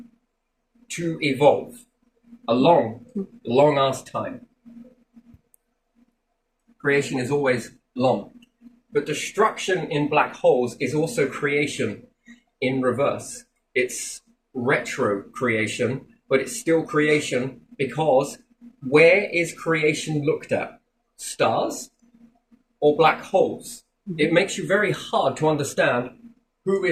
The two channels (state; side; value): identical; both; correlation 1.00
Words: to evolve. A long-ass time. Creation is always long. But destruction in black holes is also creation in reverse. It's retro creation, but it's still creation, because where is creation looked at? Stars or black holes? It makes you very hard to understand who